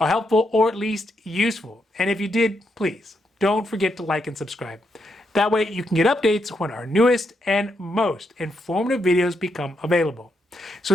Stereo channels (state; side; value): normal; both; correlation 0.80